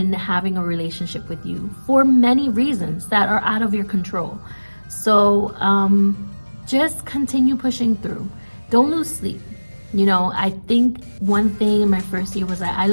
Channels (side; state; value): both; inverted; correlation -1.00